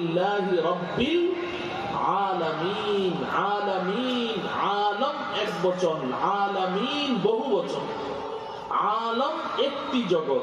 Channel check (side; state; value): both; identical; correlation 1.00